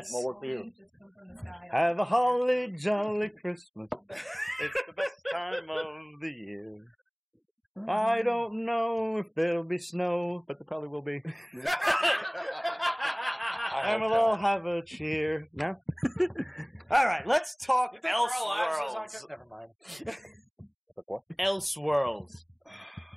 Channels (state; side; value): identical; both; correlation 1.00